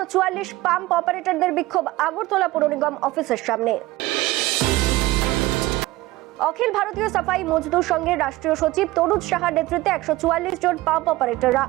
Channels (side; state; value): left; quieter; 18.5 dB